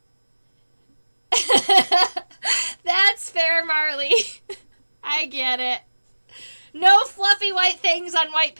That's fair, Marley. I get it. No fluffy white things on white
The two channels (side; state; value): both; inverted; correlation -1.00